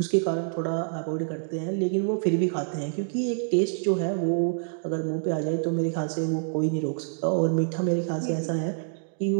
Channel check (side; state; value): left; silent; digital silence